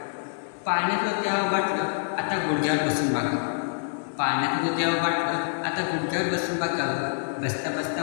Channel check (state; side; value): silent; right; digital silence